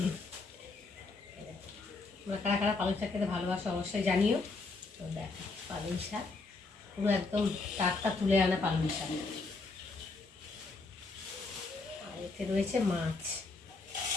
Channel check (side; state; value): right; quieter; 3.8 dB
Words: তোমরা কারা কারা পালং শাক খেতে ভালোবাসো অবশ্যই জানিও। তো দেখো পালং শাক পুরো একদম টাটকা তুলে আনা পালং শাক। আর এতে রয়েছে মাছ,